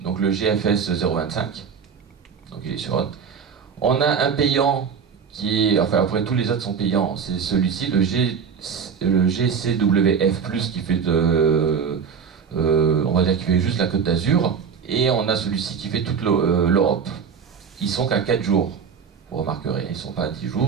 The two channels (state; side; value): quieter; left; 6.5 dB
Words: donc le GFS 025. Donc il est sur Hot. On a un payant qui est, enfin après tous les autres sont payants, c'est celui-ci, le GCWF+, qui fait on va dire qui fait juste la Côte d'Azur, et on a celui-ci qui fait toute l'Europe. Ils sont qu'à 4 jours, vous remarquerez, ils ne sont pas à 10